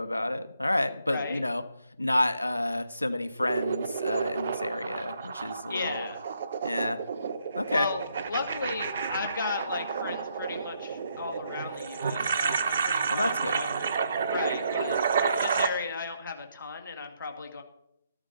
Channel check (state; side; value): inverted; both; correlation -0.76